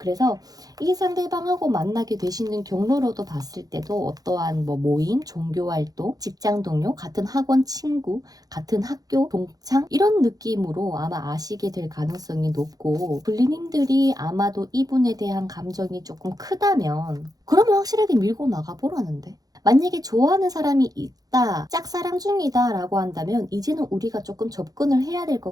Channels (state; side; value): late; left; 0.18 ms